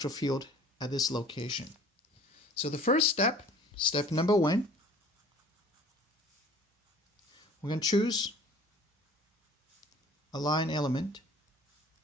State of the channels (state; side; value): normal; both; correlation 0.49